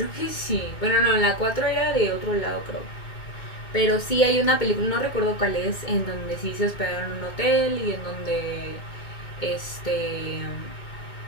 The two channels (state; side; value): late; right; 2.2 ms